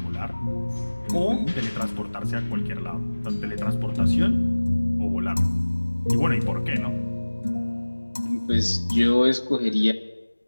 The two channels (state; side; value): inverted; both; correlation -1.00